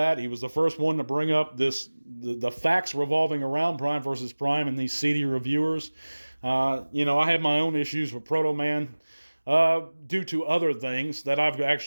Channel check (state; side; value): inverted; both; correlation -1.00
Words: He was the first one to bring up the facts revolving around Prime vs. Prime and these seedy reviewers. I have my own issues with Proto Man due to other things that I've